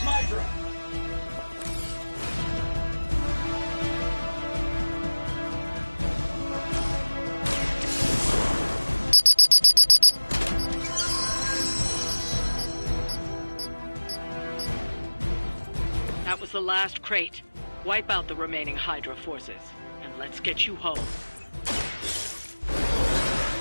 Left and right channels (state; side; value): inverted; both; correlation -1.00